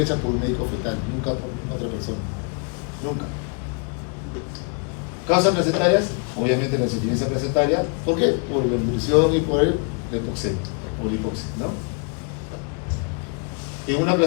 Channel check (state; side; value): quieter; right; 36.9 dB